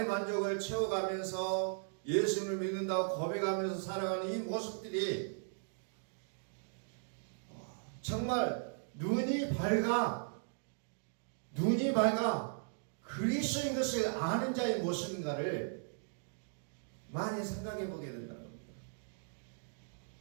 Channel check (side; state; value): left; silent; digital silence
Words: 만족을 채워가면서 예수를 믿는다고 고백하면서 살아가는 이 모습들이 정말 눈이 밝아 그리스도인 것을 아는 자의 모습인가를 많이 생각해 보게 된다는 겁니다.